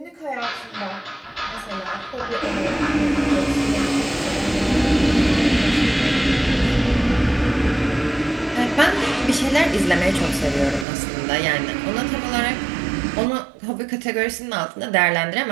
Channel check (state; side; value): drops out; left; at 10.9 s